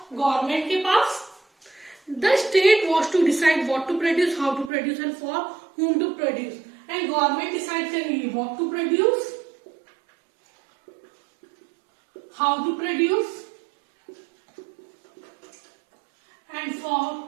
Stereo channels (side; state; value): left; drops out; at 4.7 s